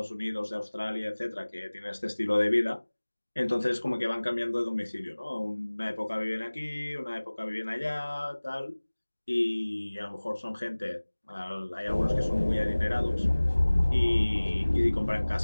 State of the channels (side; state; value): both; inverted; correlation -1.00